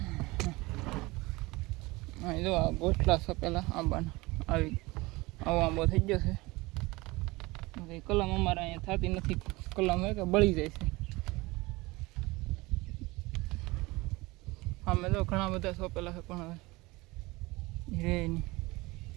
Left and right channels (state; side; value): quieter; left; 22.3 dB